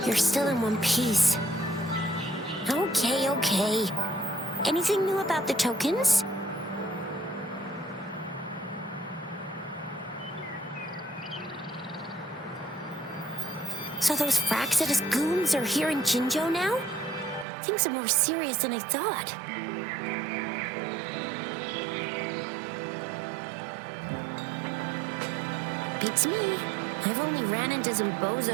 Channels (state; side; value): drops out; left; at 17.4 s